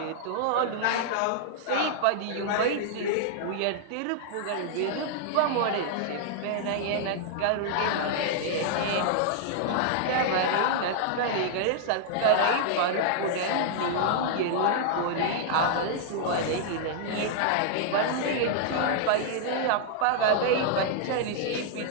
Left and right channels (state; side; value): different; both; correlation -0.01